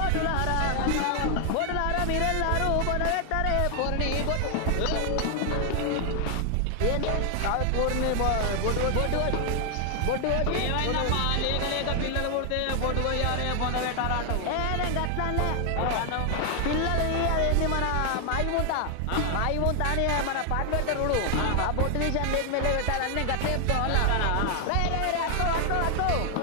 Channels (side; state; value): both; different; correlation 0.00